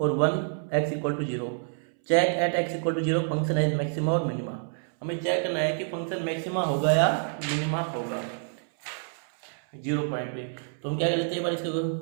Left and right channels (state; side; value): silent; left; 60 dB below the other